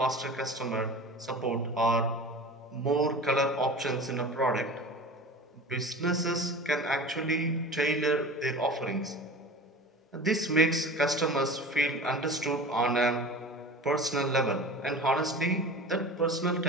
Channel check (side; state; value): both; normal; correlation 0.35